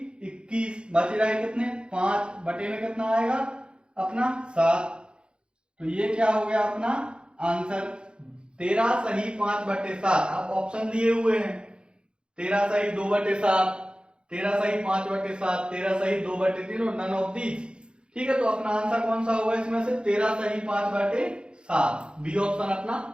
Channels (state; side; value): late; left; 0.053 ms